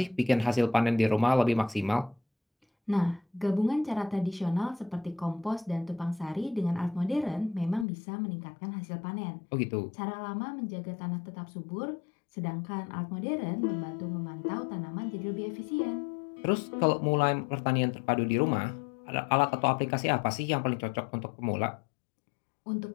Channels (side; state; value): right; drops out; at 7.9 s